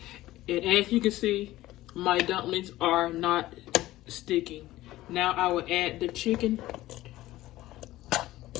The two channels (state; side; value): quieter; right; 16.3 dB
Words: as you can see, my dumplings are not sticking. Now I will add the chicken.